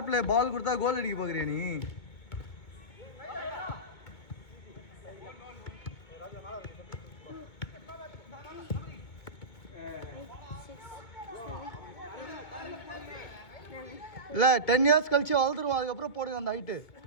பிளே, பால் கொடுத்தா கோல் அடிக்க பாக்குறியா நீ? இல்ல 10 இயர்ஸ் கழிச்சு வளர்ந்துருவான், அதுக்கப்புறம் போடுங்க அந்த ஹைட்டு.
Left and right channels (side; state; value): right; late; 2.2 ms